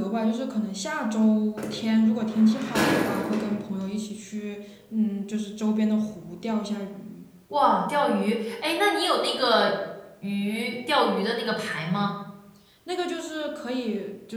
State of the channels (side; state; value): both; identical; correlation 1.00